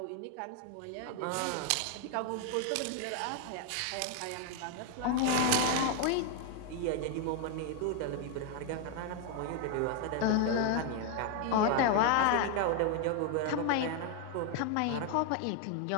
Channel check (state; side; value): different; both; correlation 0.00